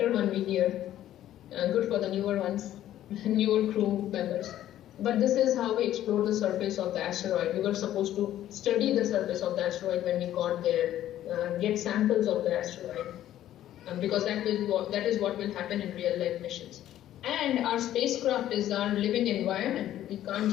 one here. Good for the newer ones, newer crew members. But this is how we explored the surface of the asteroid. We were supposed to study the surface of the asteroid when we got there, get samples of the asteroid. Because that is what will happen in real life missions. And our spacecraft is our living environment. We can't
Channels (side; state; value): right; quieter; 12.5 dB